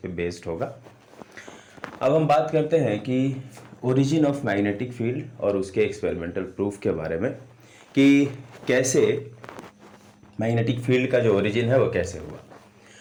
बेस्ड होगा। अब हम बात करते हैं कि ओरिजिन ऑफ मैग्नेटिक फील्ड और उसके एक्सपेरिमेंटल प्रूफ के बारे में, कि कैसे मैग्नेटिक फील्ड का जो ओरिजिन है वो कैसे हुआ।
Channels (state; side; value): identical; both; correlation 1.00